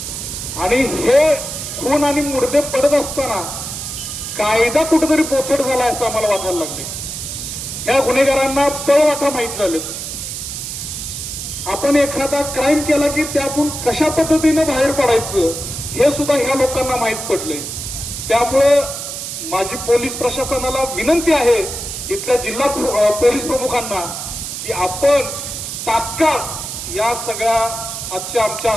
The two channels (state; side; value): noise; right; hiss, 6 dB below the sound